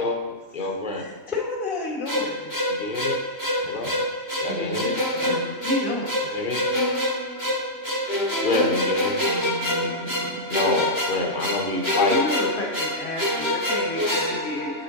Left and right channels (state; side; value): late; left; 2.9 ms